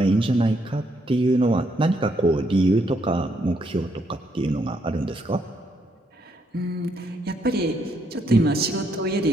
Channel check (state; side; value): normal; both; correlation 0.74